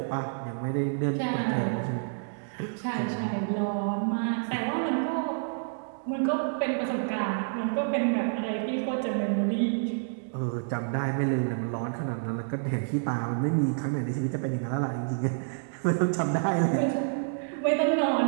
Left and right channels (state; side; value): silent; left; digital silence